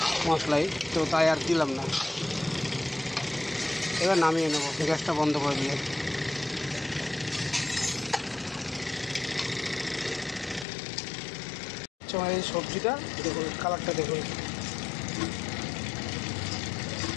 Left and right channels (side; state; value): right; drops out; at 10.7 s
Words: মশলাই, তো তাই আর দিলাম না। এবার নামিয়ে নেব গ্যাসটা বন্ধ করে দিয়ে। এই সবজিটা দেখুন, কালারটা দেখুন।